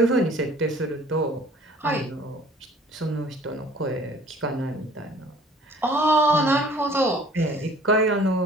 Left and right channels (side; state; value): both; normal; correlation 0.52